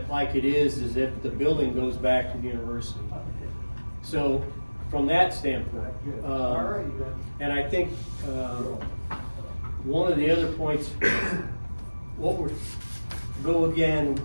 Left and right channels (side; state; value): both; inverted; correlation -1.00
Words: like it is if the building goes back to the university. So from that standpoint, and I think one of the other points, which